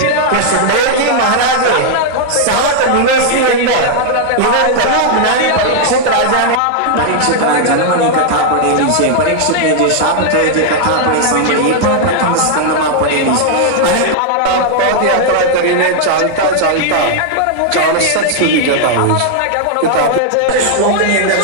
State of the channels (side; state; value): both; different; correlation 0.00